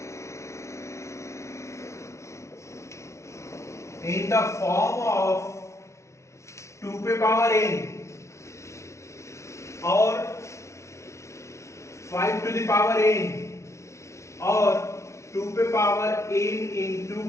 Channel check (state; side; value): late; right; 0.14 ms